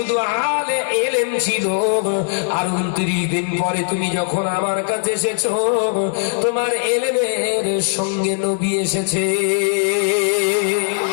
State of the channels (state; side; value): silent; right; digital silence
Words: আলে এলেম ছিল, আর 29 দিন পরে তুমি যখন আমার কাছে এসেছ তোমার এলেমের সঙ্গে নবী এসেছে।